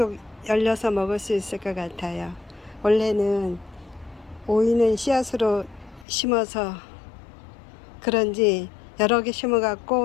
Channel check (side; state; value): right; drops out; at 6.1 s